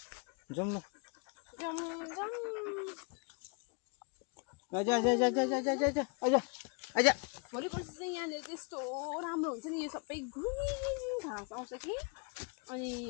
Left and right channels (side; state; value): right; quieter; 35.6 dB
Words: जाउँ ल भोलि पर्सि चाहिँ यहाँनिर चाहिँ यस्तो राम्रो हुन्छ नि यो सबै ग्रिन घाँस आउँछ कि अनि